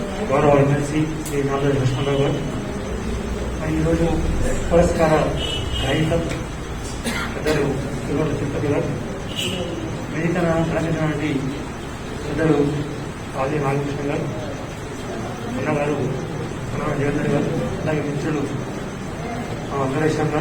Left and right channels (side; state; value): both; identical; correlation 1.00